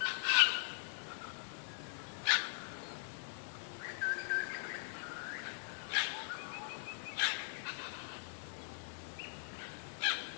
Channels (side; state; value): right; silent; digital silence